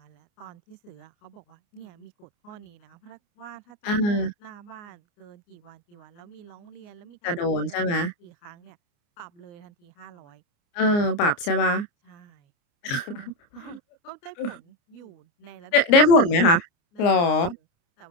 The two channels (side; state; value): right; late; 29 ms